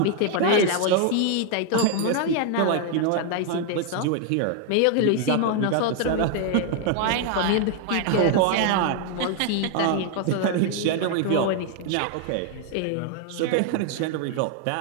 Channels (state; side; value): different; both; correlation 0.00